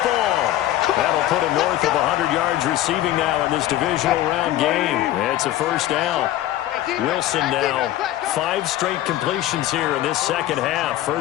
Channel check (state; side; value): quieter; right; 13.8 dB